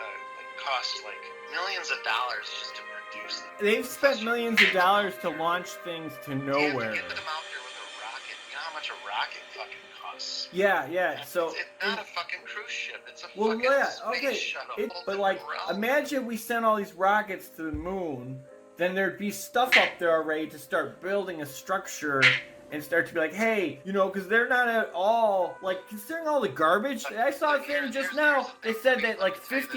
cost like millions of dollars just to produce them. They've spent millions of dollars to launch things to nowhere. You have to get them out there with a rocket. You know how much a rocket fucking costs? Yeah. So it's not a fucking cruise ship. It's a fucking space shuttle. But like, imagine we sent all these rockets to the moon. Then there'd be stuff up there already to start building a structure and start to be like, hey, you know, because they're not at all, like, considering all the garbage. I saw a thing just now, they said that like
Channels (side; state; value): both; identical; correlation 1.00